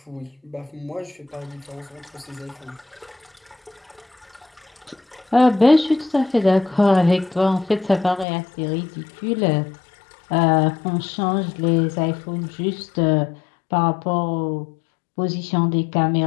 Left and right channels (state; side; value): drops out; right; at 8.2 s